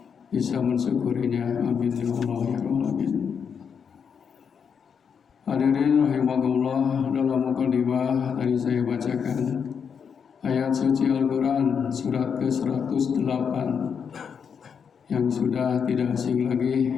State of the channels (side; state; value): right; quieter; 6.8 dB